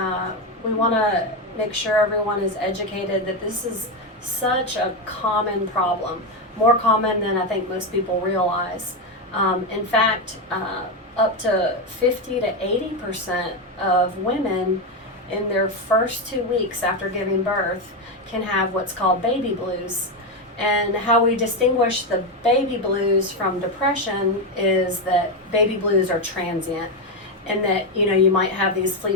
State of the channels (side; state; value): both; normal; correlation 0.10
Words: we want to make sure everyone is educated that this is such a common problem, more common than I think most people realize. In fact, up to 50 to 80% of women in their first 2 weeks after giving birth can have what's called baby blues. And how we distinguish the baby blues from depression is that baby blues are transient, and that you might have these